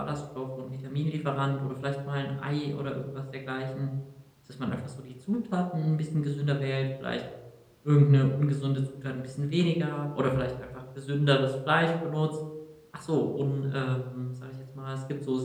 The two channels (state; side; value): identical; both; correlation 1.00